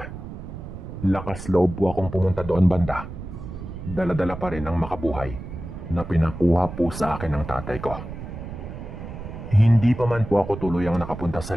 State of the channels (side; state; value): right; noise; rumble, 10 dB below the sound